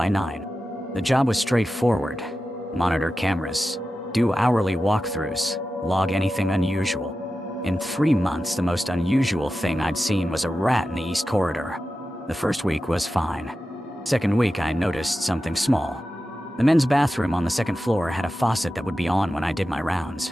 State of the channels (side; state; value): both; normal; correlation 0.92